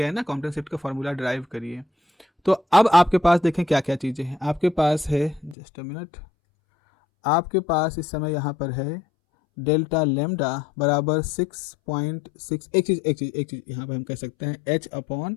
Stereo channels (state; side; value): drops out; right; at 5.6 s